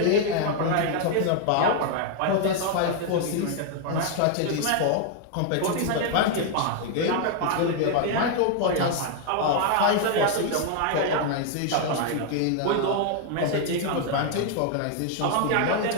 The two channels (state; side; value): different; both; correlation 0.00